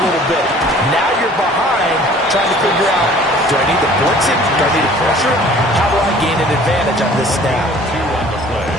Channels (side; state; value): both; normal; correlation 0.51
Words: little bit. Now you're behind trying to figure out, do I need to blitz it? Do I need to pressure it? How do I gain an advantage on this snap? 2 on the play.